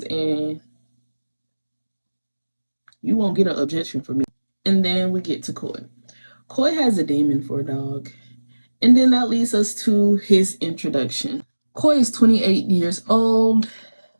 and you won't get an objection from me. And then we get to Coy. Coy has a demon for a dog. And then that leads us to his introduction. Coy is 28 years old,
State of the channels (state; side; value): inverted; both; correlation -1.00